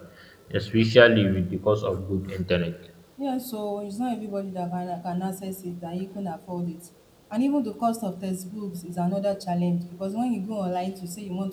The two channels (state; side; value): identical; both; correlation 1.00